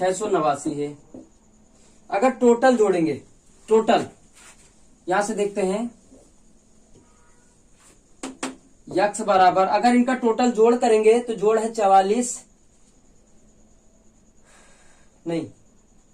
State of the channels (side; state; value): both; identical; correlation 1.00